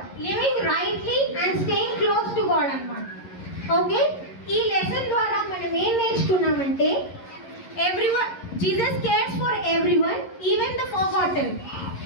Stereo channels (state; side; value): late; right; 11 ms